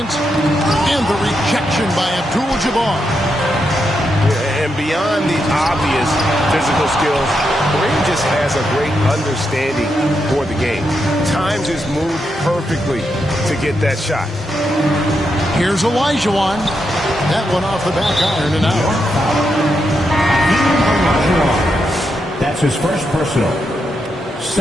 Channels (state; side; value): normal; both; correlation 0.83